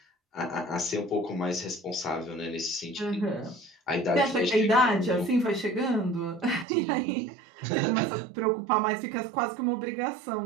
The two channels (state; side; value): drops out; left; at 6.7 s